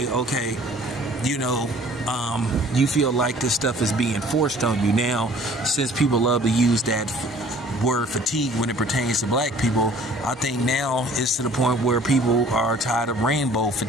okay, you feel like this stuff is being forced on you. Now, since people love to use that word fatigue when it pertains to black people, I think now it's to the point where people are tired of rainbow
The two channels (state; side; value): normal; both; correlation 0.53